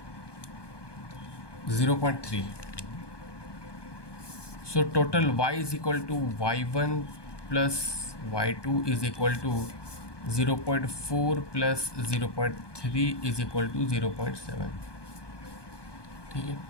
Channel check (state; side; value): late; right; 1.2 ms